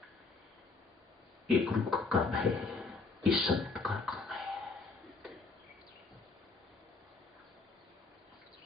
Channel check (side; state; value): right; quieter; 4.1 dB